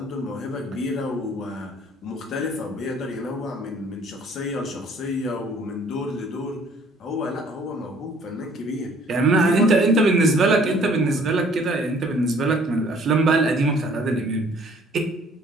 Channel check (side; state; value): both; normal; correlation 0.57